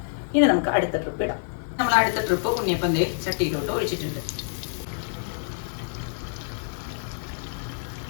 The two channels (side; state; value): right; silent; digital silence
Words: ഇനി നമുക്ക് അടുത്ത ട്രിപ്പ് ഇടാം. നമ്മൾ അടുത്ത ട്രിപ്പ് ഉണ്ണിയപ്പം ചട്ടിയിലോട്ട് ഒഴിച്ചിട്ടുണ്ട്.